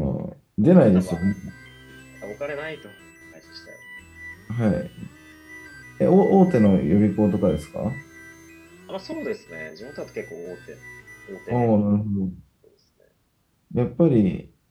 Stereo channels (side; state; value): both; identical; correlation 1.00